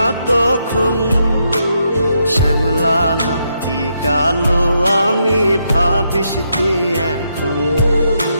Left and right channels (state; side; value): inverted; both; correlation -0.79